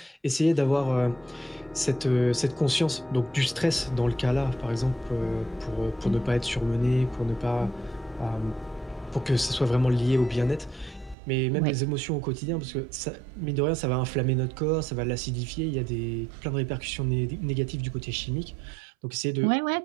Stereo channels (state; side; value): drops out; left; at 11.2 s